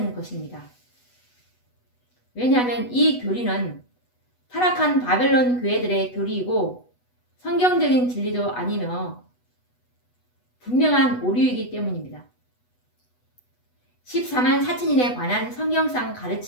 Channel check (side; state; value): right; late; 8.1 ms